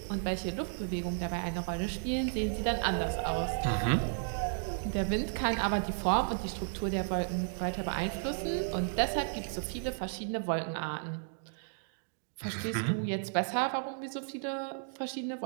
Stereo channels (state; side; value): silent; left; digital silence